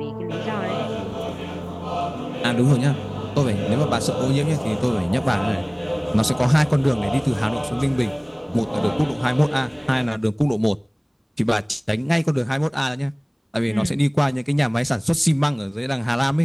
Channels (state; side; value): identical; both; correlation 1.00